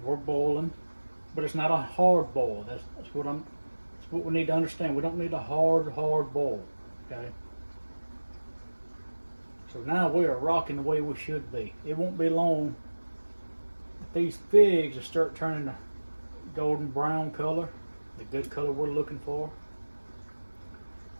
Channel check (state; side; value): inverted; both; correlation -1.00